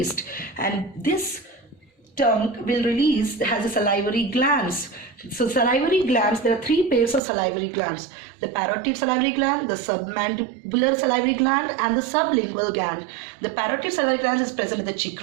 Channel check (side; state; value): left; drops out; at 7.2 s